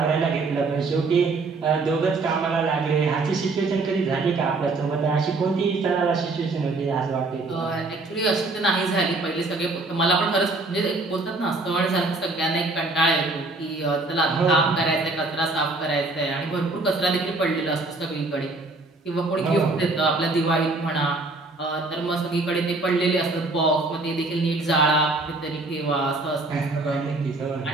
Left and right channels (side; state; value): left; quieter; 3.3 dB